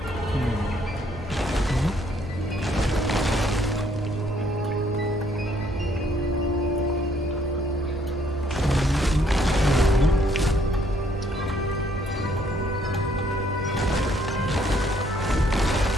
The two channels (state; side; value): normal; both; correlation 0.67